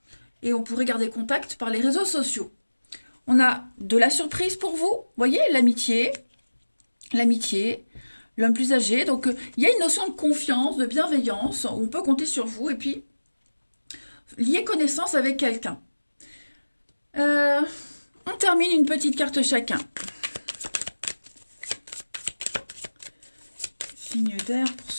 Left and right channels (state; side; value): inverted; both; correlation -1.00